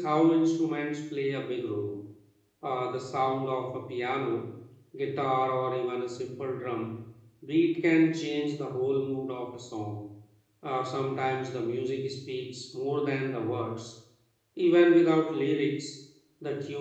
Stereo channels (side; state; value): both; identical; correlation 1.00